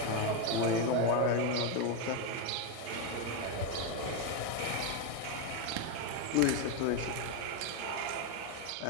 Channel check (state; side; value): different; both; correlation 0.02